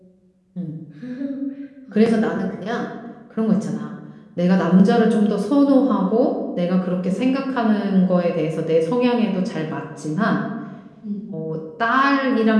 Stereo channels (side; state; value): both; identical; correlation 1.00